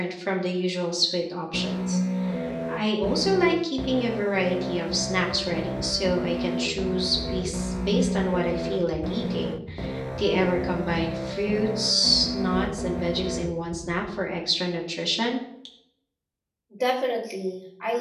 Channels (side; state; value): both; identical; correlation 1.00